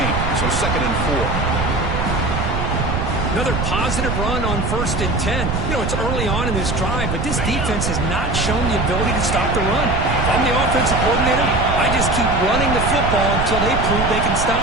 so 2nd and 4. Another positive run on 1st and 10. You know, it's early on in this drive, but this defense has not shown the ability to stop the run. If I'm the offensive coordinator, I just keep running the football until they prove they can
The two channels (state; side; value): noise; right; rumble, 2 dB below the sound